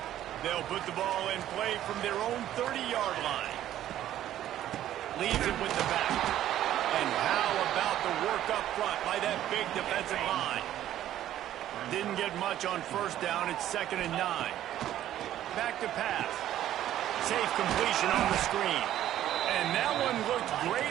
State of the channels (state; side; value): quieter; left; 12.3 dB